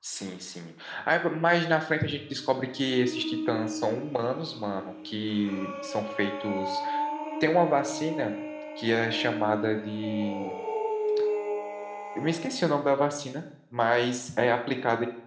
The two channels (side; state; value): both; identical; correlation 1.00